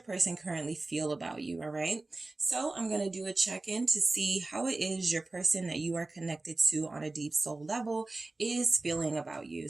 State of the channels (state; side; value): quieter; left; 3.2 dB